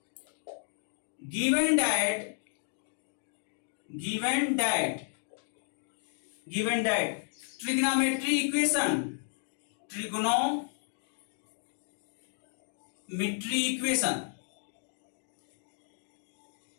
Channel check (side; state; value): right; silent; digital silence